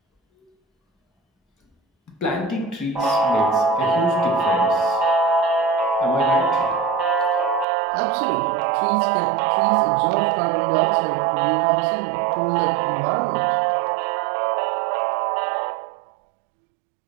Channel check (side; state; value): left; drops out; at 7.7 s